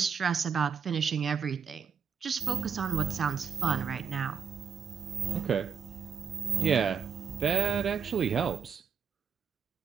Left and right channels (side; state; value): left; quieter; 6.8 dB